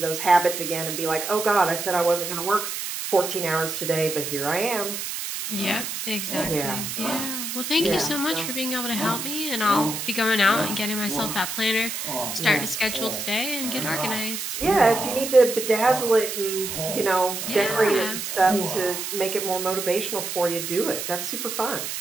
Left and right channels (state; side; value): noise; right; hiss, 5 dB below the sound